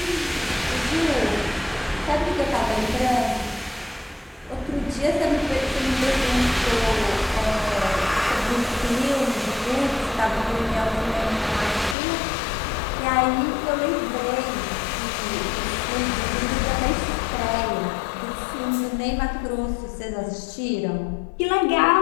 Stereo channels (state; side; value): drops out; right; at 12.0 s